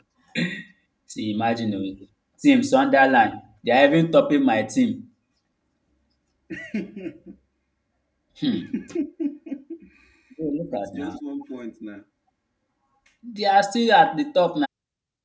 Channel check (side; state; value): both; identical; correlation 1.00